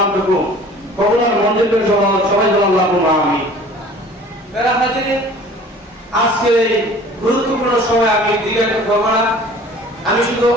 কবুলার মঞ্জুর করে সবাই বলেন আল্লাহুম্মা আমিন। প্রিয় হাজিরিন, আজকে এই গুরুত্বপূর্ণ সময় আমি দীর্ঘায়িত করব না, আমি শুধু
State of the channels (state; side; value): normal; both; correlation 0.47